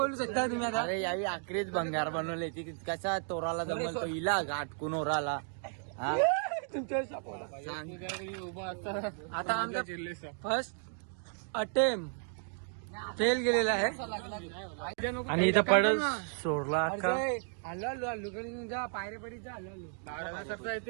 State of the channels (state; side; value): silent; left; 55 dB below the other